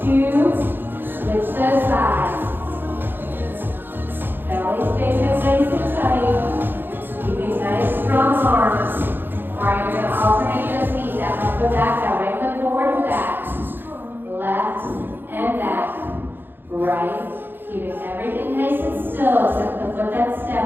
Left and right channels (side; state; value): left; late; 0.098 ms